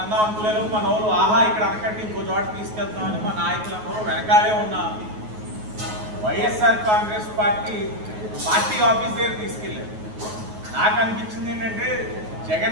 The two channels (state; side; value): late; left; 9.4 ms